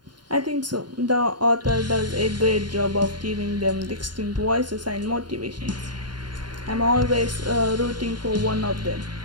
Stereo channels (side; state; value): left; late; 0.71 ms